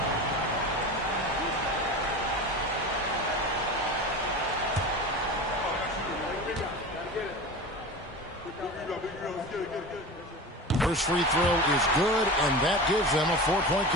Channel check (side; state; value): both; normal; correlation 0.30